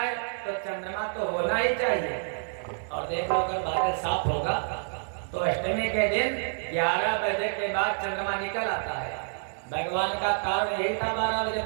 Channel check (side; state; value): left; silent; digital silence